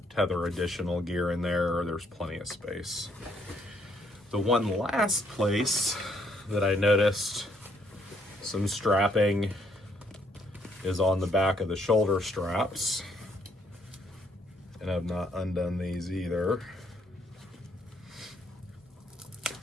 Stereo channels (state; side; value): normal; both; correlation 0.69